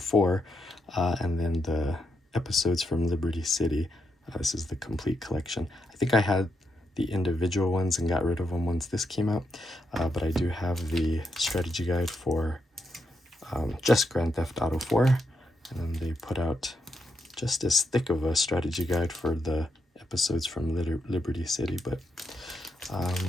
and then the episodes from Liberty City. This is the complete collection. I think I had the individual ones and got rid of them once this came out, but I do have the strategy guide for just Grand Theft Auto 4, and then they put out just as thick of a strategy guide for the episodes from Liberty City, but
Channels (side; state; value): both; normal; correlation 0.82